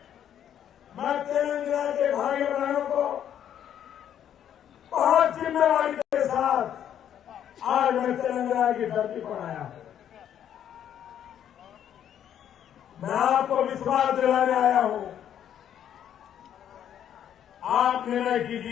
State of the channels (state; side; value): quieter; right; 9.9 dB